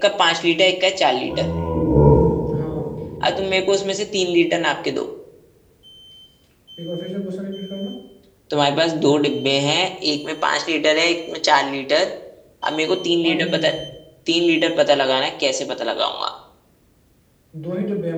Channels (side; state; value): both; identical; correlation 1.00